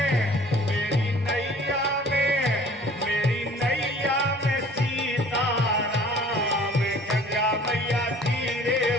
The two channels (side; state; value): both; normal; correlation 0.50